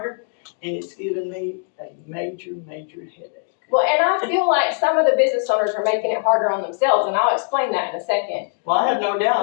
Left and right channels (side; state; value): right; silent; 57 dB below the other